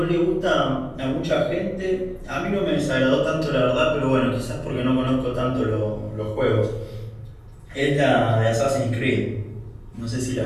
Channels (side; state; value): both; identical; correlation 1.00